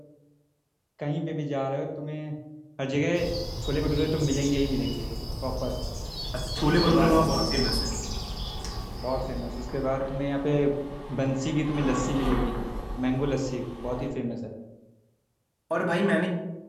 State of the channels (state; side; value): identical; both; correlation 1.00